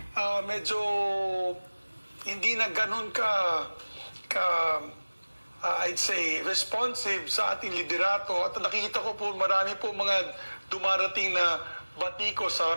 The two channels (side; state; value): both; inverted; correlation -1.00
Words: medyo hindi na ganun I'd say, responsive sa ating liderato. At nakikita ko po marami po mga dumarating na batiko